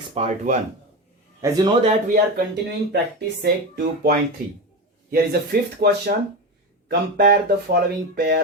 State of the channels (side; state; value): both; normal; correlation 0.20